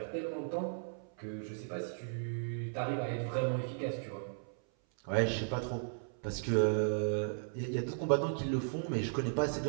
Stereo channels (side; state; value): left; silent; 54 dB below the other